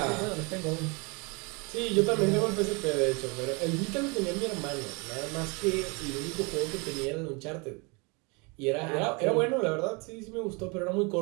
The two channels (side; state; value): left; quieter; 30.1 dB